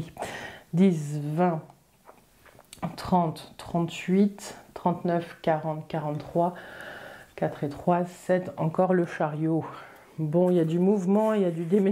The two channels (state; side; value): identical; both; correlation 1.00